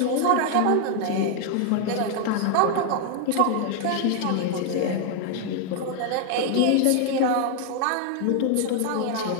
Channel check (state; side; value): different; both; correlation 0.00